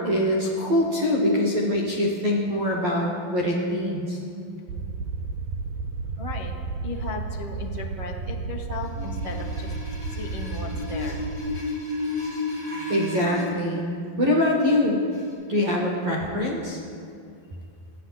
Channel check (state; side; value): late; left; 11 ms